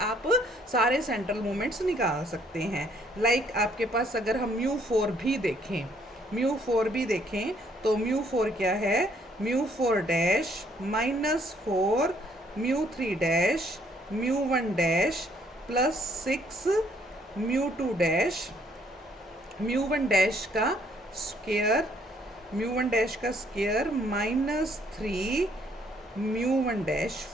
सारे सेंट्रल मूवमेंट्स निकाल सकते हैं। लाइक आपके पास अगर हम μ4 भी देखें, μ4 भी देखें तो μ4 क्या है, μ4 dash minus 4 μ3 dash μ1 dash plus 6 μ2 dash, μ1 dash का स्क्वायर, μ1 डैश का square minus 3 μ1 dash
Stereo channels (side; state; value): both; normal; correlation 0.65